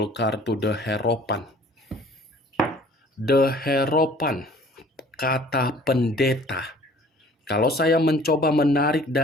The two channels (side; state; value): both; normal; correlation 0.52